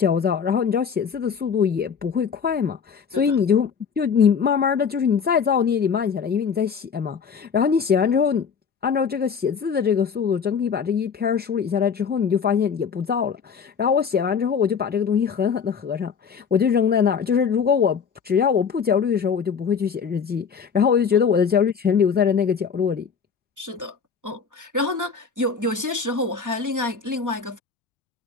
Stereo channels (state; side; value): quieter; right; 6.4 dB